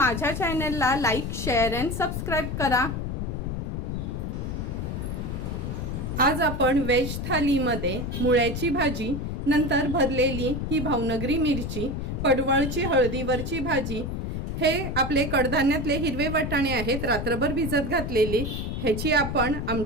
चॅनलला लाईक, शेअर अँड सबस्क्राइब करा। आज आपण वेज थालीमध्ये मुळ्याची भाजी, नंतर भरलेली ही भावनगरी मिरची, पडवळची हळदीवरची भाजी, हे आपले कडधान्यातले हिरवे वाटाणे आहेत रात्रभर भिजत घातलेले, ह्याची आपण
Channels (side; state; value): left; noise; rumble, 3 dB below the sound